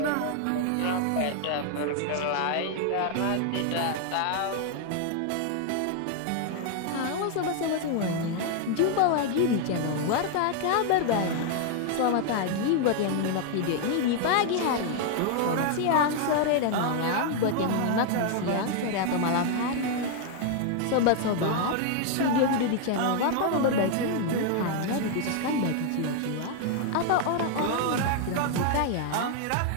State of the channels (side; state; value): both; different; correlation 0.00